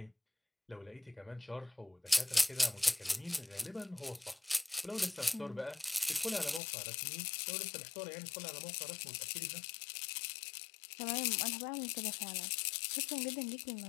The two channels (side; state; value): right; drops out; at 6.6 s